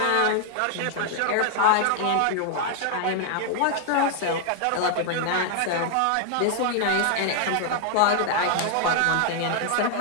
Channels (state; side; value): different; both; correlation 0.00